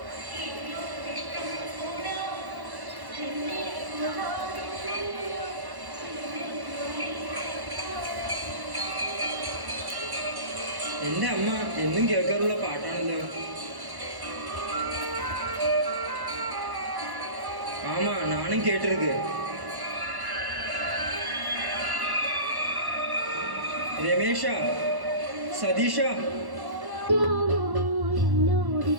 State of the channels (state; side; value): late; left; 1.1 ms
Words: എന്റെ അമ്മ എന്നും കേൾക്കാറുള്ള പാട്ടാണല്ലോ. ആമാ, നാനും കേട്ടിருக்கு. രമേശ, സതീഷ,